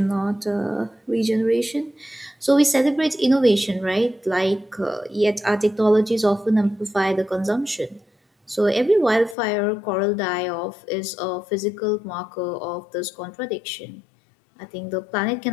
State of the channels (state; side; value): drops out; right; at 9.3 s